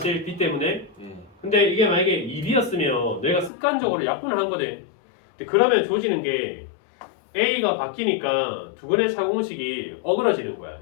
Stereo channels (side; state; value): right; drops out; at 3.5 s